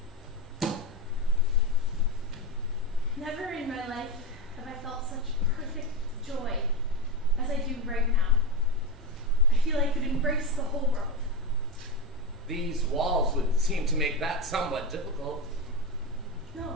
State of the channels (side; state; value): both; normal; correlation 0.15